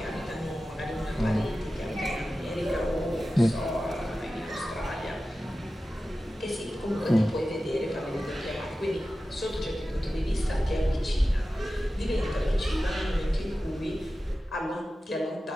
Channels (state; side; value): normal; both; correlation 0.94